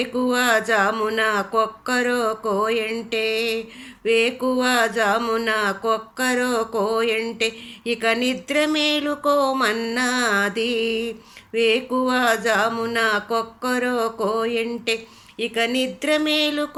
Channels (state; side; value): identical; both; correlation 1.00